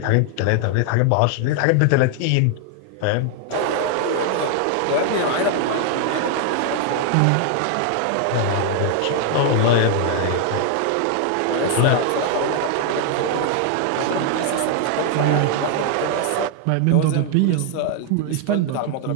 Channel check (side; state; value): both; different; correlation 0.00